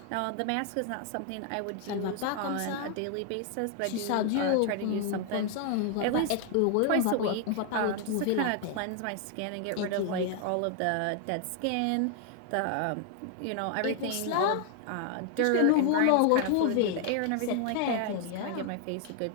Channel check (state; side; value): different; both; correlation 0.00